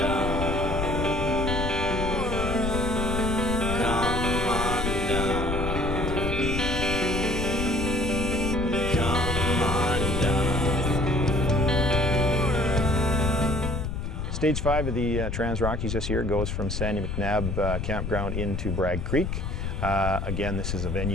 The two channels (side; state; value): left; noise; rumble, 3 dB below the sound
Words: Come undone. Come undone. Stage 5 of the TransRockies this year goes from Sandy McNabb Campground into Bragg Creek. Again, this is a